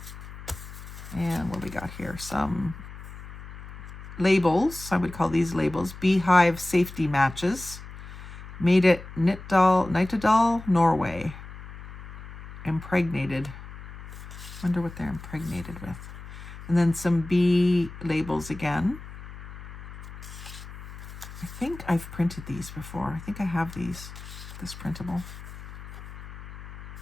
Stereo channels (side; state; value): left; noise; hum, 13 dB below the sound